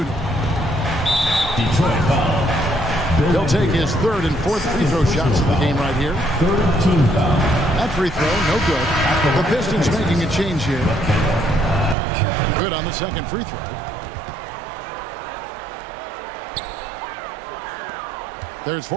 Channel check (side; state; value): left; drops out; at 12.0 s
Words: Detroit foul. He'll take his third and fourth free throw shots of the game right here. Third team foul. That free throw, no good. The Pistons making a change here. Good on the second free throw. There's